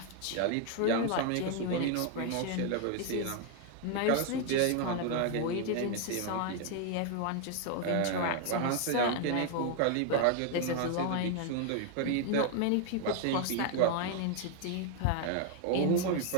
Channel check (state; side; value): different; both; correlation 0.00